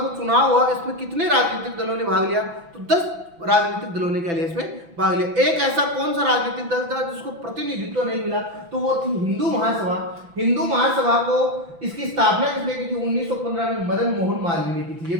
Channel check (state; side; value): late; left; 6.0 ms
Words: चुनाव हुआ इसमें कितने राजनीतिक दलों ने भाग लिया, तो 10 राजनीतिक दलों ने क्या लिया, इसमें भाग लिया। एक ऐसा कौन सा राजनीतिक दल था जिसको प्रतिनिधित्व नहीं मिला, तो वो थी हिंदू महासभा। हिंदू महासभा को इसकी स्थापना किसने की थी, 1915 में मदन मोहन मालवीय ने की थी। ये